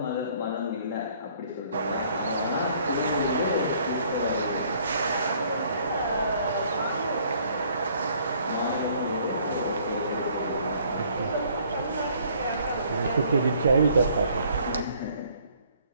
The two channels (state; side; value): inverted; both; correlation -0.61